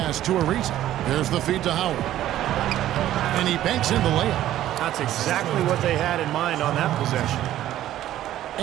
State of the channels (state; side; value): quieter; left; 13.0 dB